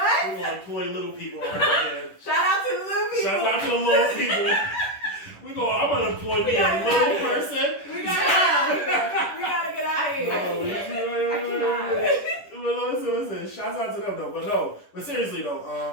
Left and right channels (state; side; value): late; right; 10 ms